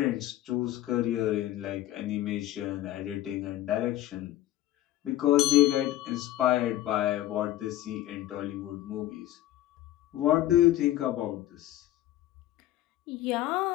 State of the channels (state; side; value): quieter; right; 14.3 dB